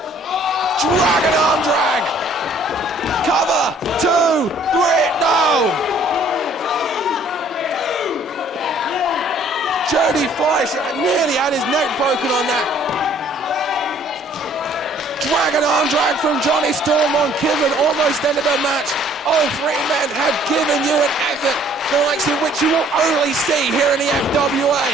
Dragon arm drag. Cover, 2, 3, no. Jody Fleisch nearly had his neck broken on that. Dragon arm drag from Johnny Storm on Kidman, almost ended the match. All 3 men have given you an effort, the likes of which you will only see here in the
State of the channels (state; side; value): normal; both; correlation 0.58